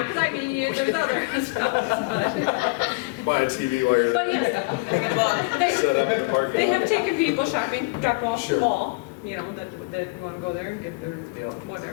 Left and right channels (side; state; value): right; quieter; 26.8 dB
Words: because I mean, there's other stops, Buy a TV while you're but there. yes. Set up in the parking lot. They have taken people shopping, drop off Sure. the mall, that want to go there and get their Yeah.